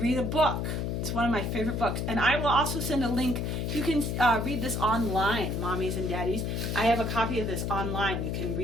a book. It's one of my favorite books. And I will also send a link. You can read this online, mommies and daddies. I have a copy of this online. You can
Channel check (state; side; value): noise; left; hum, 1 dB below the sound